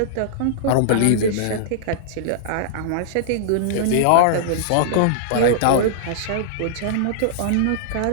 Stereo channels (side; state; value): both; different; correlation -0.02